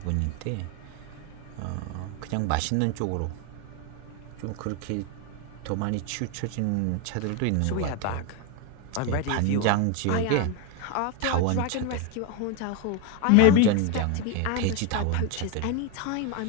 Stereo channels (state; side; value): different; both; correlation 0.02